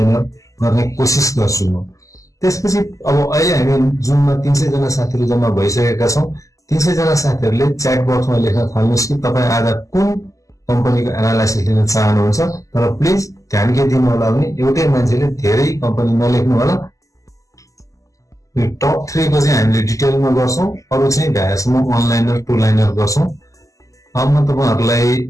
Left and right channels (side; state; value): right; late; 0.16 ms